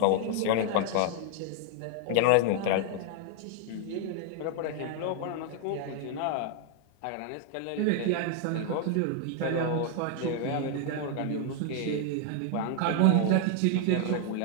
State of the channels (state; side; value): different; both; correlation 0.00